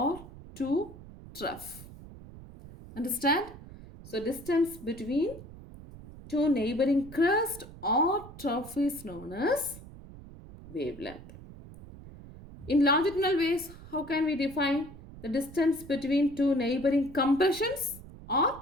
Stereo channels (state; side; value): noise; right; rumble, 16 dB below the sound